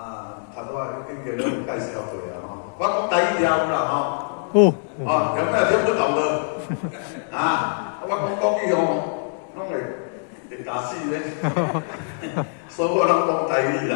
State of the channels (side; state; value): right; silent; digital silence